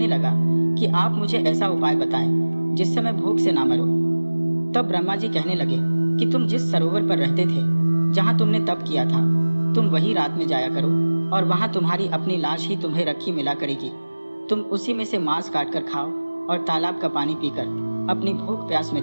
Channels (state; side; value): inverted; both; correlation -1.00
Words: लगा कि आप मुझे ऐसा उपाय बताएं जिससे मैं भूख से ना मरूं। तब ब्रह्मा जी कहने लगे कि तुम जिस सरोवर पर रहते थे, जहाँ तुमने तप किया था, तुम वही रात में जाया करो और वहाँ तुम्हारी अपनी लाश ही तुम्हें रखी मिला करेगी। तुम उसी में से मांस काट कर खाओ और तालाब का पानी पीकर अपनी भूख प्यास